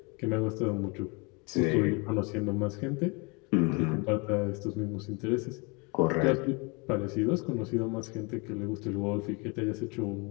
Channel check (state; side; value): quieter; right; 30.1 dB